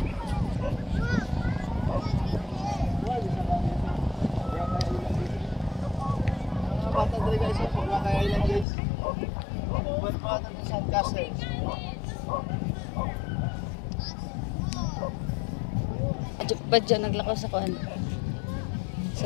Badyaw naglakaw sa kuan. Sa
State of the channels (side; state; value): right; drops out; at 8.7 s